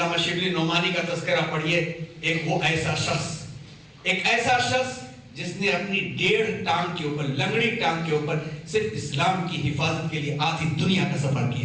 شبلی نعمانی کا تذکرہ پڑھیے۔ ایک ایسا شخص جس نے اپنی 1.5 ٹانگ کے اوپر، لنگڑی ٹانگ کے اوپر صرف اسلام کی حفاظت کے لیے آدھی دنیا کا سفر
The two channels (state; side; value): identical; both; correlation 1.00